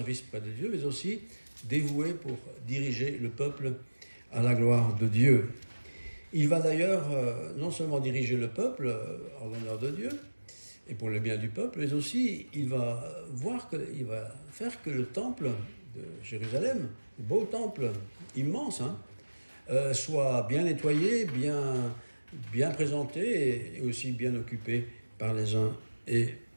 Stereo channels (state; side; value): inverted; both; correlation -1.00